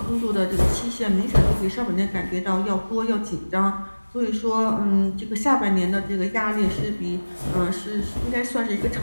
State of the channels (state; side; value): inverted; both; correlation -1.00